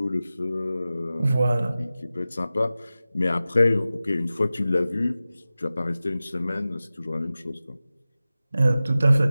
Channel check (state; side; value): inverted; both; correlation -0.95